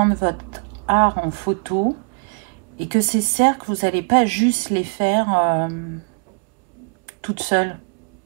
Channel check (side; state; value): left; quieter; 36.8 dB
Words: votre art en photo et que ces cercles, vous n'allez pas juste les faire toute seule.